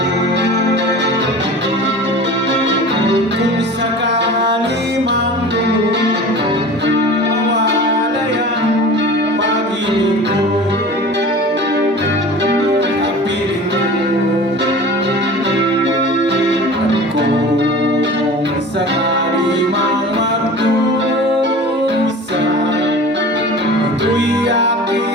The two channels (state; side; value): normal; both; correlation 0.38